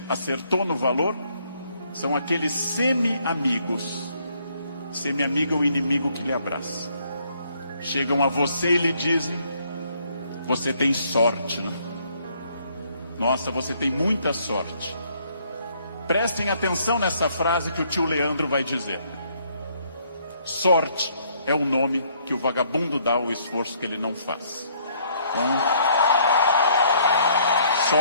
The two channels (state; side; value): inverted; both; correlation -0.66